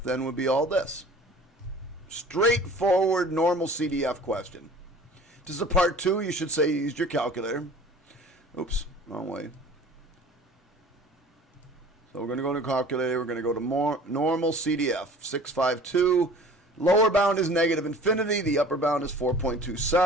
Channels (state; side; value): normal; both; correlation 0.46